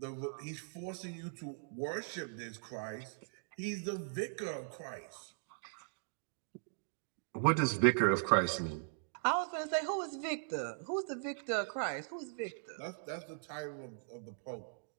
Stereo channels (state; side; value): silent; left; digital silence